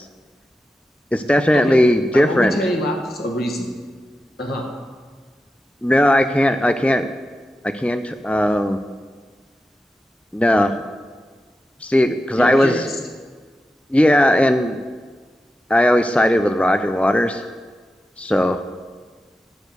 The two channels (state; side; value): normal; both; correlation 0.91